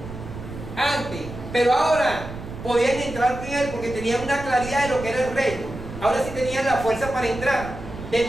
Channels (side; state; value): right; noise; rumble, 11 dB below the sound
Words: antes, pero ahora podían entrar en él porque tenían una claridad de lo que era el reino. Ahora sí tenían la fuerza para entrar, de